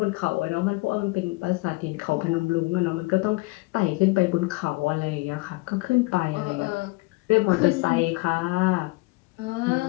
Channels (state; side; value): quieter; right; 24.3 dB